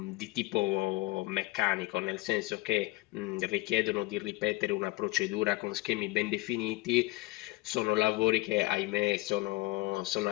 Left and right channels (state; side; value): quieter; right; 20.9 dB